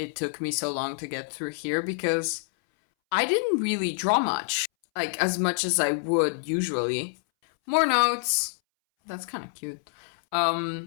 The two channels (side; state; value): right; silent; 60 dB below the other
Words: took me so long to get through here, because I didn't really draw much. Like, as much as I would usually. More notes. That's kind of cute.